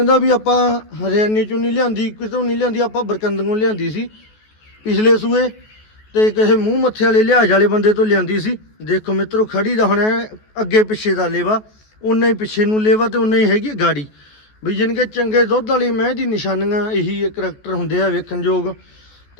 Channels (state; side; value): late; right; 14 ms